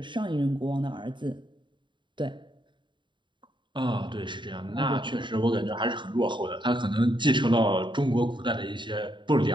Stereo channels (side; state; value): left; late; 0.23 ms